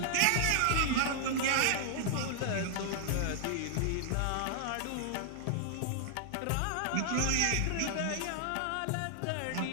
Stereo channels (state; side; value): different; both; correlation -0.01